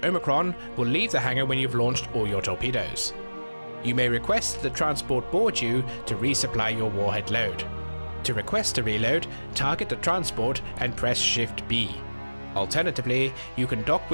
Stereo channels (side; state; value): both; inverted; correlation -1.00